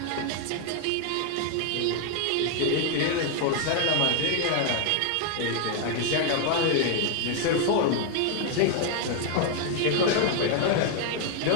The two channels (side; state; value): both; different; correlation 0.00